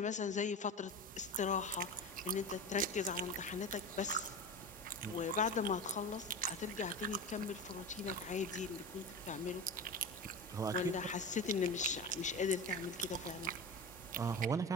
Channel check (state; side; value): normal; both; correlation 0.26